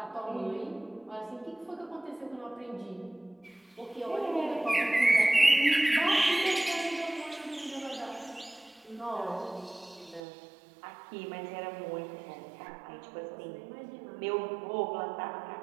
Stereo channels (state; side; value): drops out; left; at 10.2 s